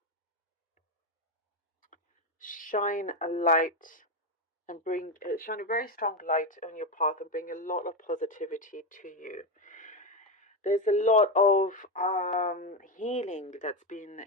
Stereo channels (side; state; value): both; normal; correlation 0.11